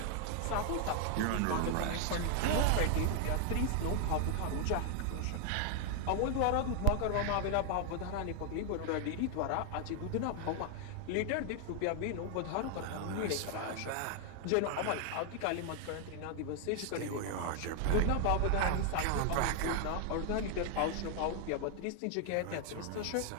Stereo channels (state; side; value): different; both; correlation 0.00